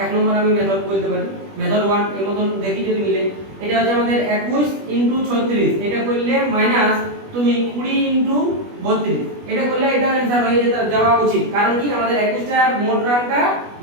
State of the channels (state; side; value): late; left; 20 ms